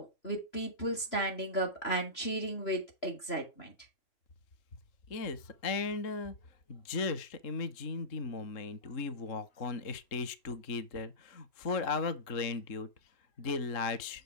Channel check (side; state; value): right; late; 3.0 ms